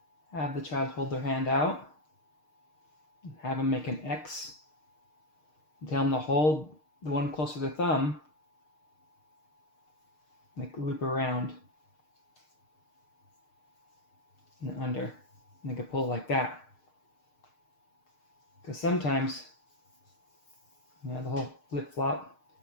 have the child hold their hand out, have them make an X, tell them to hold the one closer to the thumb, make a loop around and under, and they can pull like that. Because sometimes, the whole flip-flop,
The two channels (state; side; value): late; right; 6.5 ms